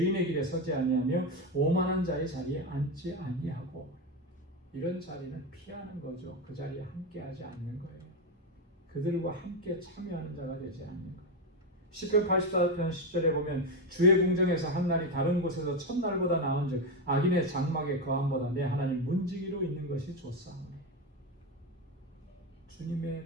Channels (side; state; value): both; normal; correlation 0.11